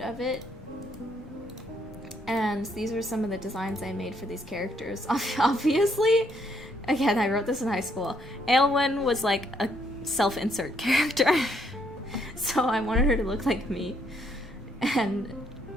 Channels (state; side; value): normal; both; correlation 0.71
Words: of it. And these are some of the designs I made for these characters. Obviously, again, I wrote this in high school. Aelwyn was like a self-insert character. So I wanted her to look like me. And